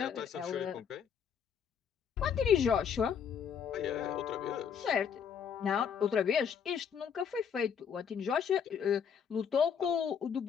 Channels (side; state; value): right; quieter; 7.4 dB